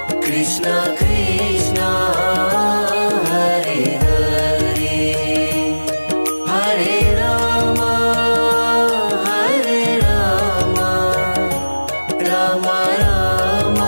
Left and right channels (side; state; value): both; inverted; correlation -1.00